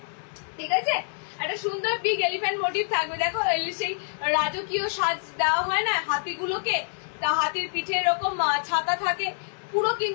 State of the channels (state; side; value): silent; right; 61 dB below the other